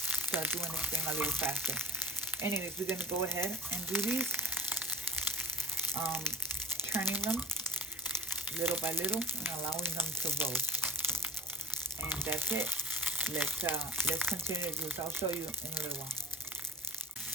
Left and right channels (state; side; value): normal; both; correlation 0.47